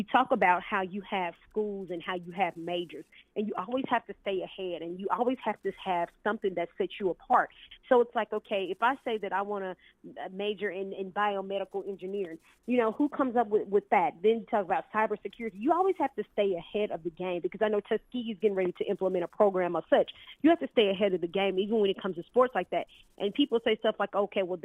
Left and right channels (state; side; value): identical; both; correlation 1.00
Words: talk about how you have schools and how you have majors, and you always have to stay ahead, and you always have to have something that sets you apart. So it's like, okay, if I say that I want to major in biomedical engineering, you know, who comes up with that? Then you talk about cybersecurity. You always have to stay ahead of the game, because I know Tuskegee is getting ready to implement a program of such. You have to stay ahead of the game, even when it comes to sports like that. And people say stuff like, okay, well,